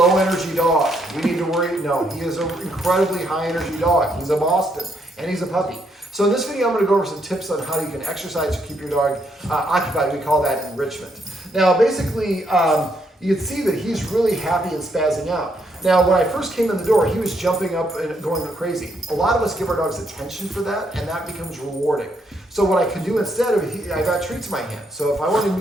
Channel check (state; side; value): normal; both; correlation 0.74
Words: energy dog. We need to worry, no, he is an incredibly high energy dog. He's a Boston and he's a puppy. So in this video, I'm going to go over some tips on how you can exercise to keep your dog occupied. We call that enrichment. Now, basically, you can see that he's really happy and spazzing out. Now, when I first came in the door, he was jumping up and going crazy. A lot of us give our dogs attention for that, and that becomes rewarding. So what I could do instead of, I got treats in my hand. So if I want him